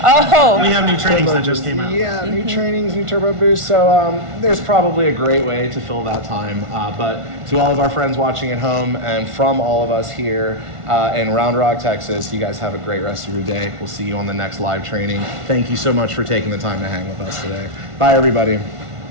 Oh, we have new trainings that just came out. Yeah, new trainings, new turbo boosts. So there's probably a great way to fill that time. But to all of our friends watching at home and from all of us here in Round Rock, Texas, you guys have a great rest of your day. We'll see you on the next live training. Thank you so much for taking the time to hang with us today. Bye, everybody.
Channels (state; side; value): late; left; 1.5 ms